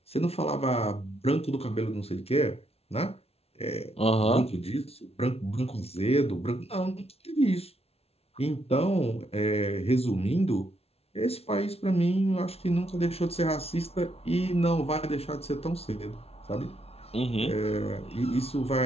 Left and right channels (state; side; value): late; right; 0.30 ms